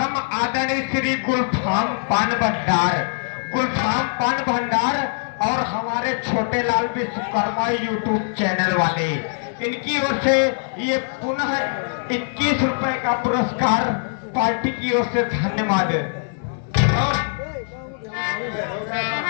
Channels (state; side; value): silent; right; 59 dB below the other